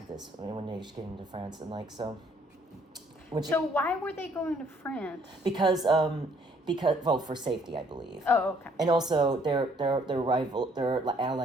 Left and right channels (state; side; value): normal; both; correlation 0.64